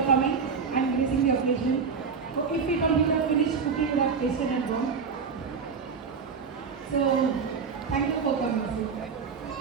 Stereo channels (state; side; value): quieter; left; 5.6 dB